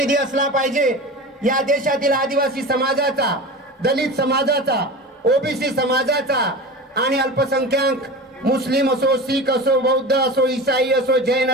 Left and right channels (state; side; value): normal; both; correlation 0.31